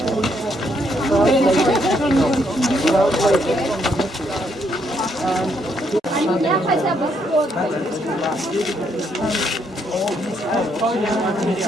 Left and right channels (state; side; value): normal; both; correlation 0.73